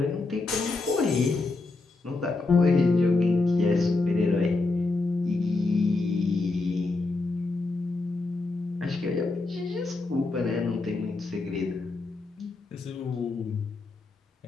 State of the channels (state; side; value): quieter; right; 3.4 dB